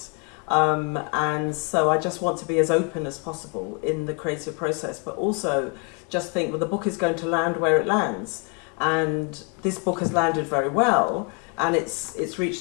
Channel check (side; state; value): right; quieter; 33.6 dB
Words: And so I just want to be as open as possible in the creative process, but also just think, well, the book is going to land where it lands. And this book has landed very well, and it's